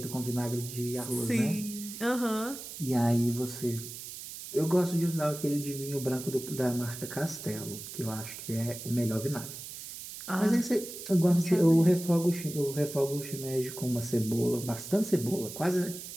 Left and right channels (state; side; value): noise; right; hiss, 11 dB below the sound